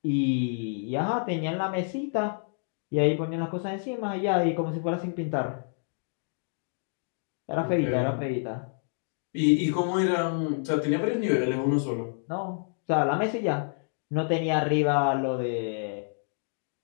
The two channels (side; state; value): right; silent; digital silence